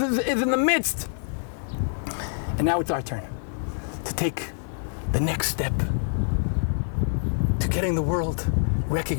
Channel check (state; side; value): silent; right; digital silence